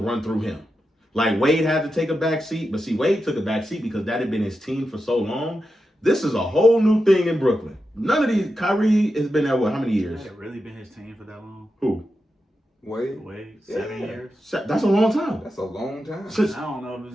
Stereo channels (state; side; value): normal; both; correlation 0.89